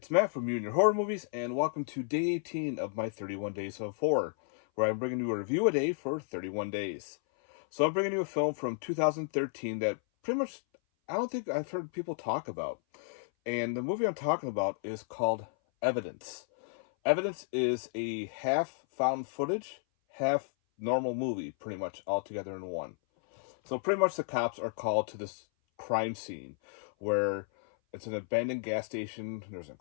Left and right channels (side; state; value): right; silent; 56 dB below the other